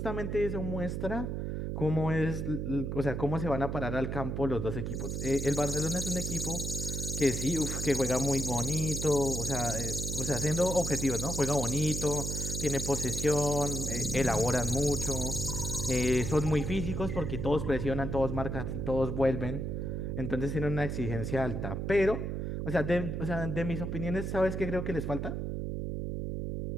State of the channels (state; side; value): noise; right; hum, 3 dB below the sound